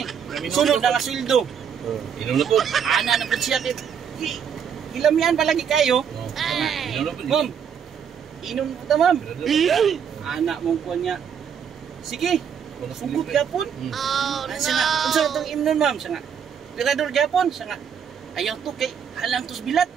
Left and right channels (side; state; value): left; quieter; 7.7 dB